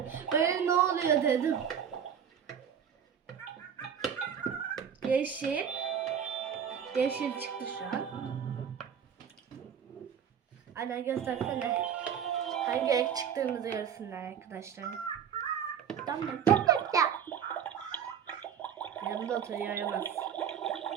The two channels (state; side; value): quieter; left; 8.1 dB